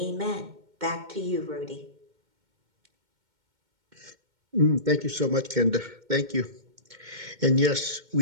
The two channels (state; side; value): late; left; 2.1 ms